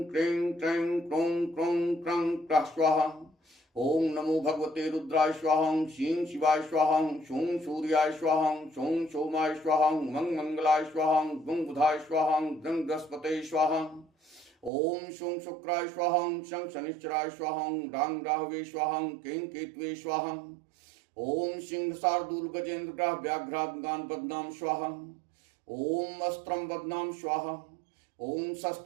क्रीं क्रीं क्रों क्रों क्रं क्रः स्वाहा। ओम नमो भगवते रुद्राय स्वाहा शीं शिवाय स्वाहा शूं सूर्याय स्वाहा शूं सोमाय स्वाहा मंग मंगलाय स्वाहा गुं बुधाय स्वाहा गृं बृहस्पते स्वाहा। ओम शूं शुक्राय स्वाहा शं शनिश्चराय स्वाहा रां राहवे स्वाहा कें केतवे स्वाहा। ओम सिंह शार्दूल गजेंद्र ग्रह व्याघ्रागान बदनाम स्वाहा। ओम अस्त्रम बदनाम स्वाहा। ओम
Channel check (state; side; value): drops out; left; at 14.7 s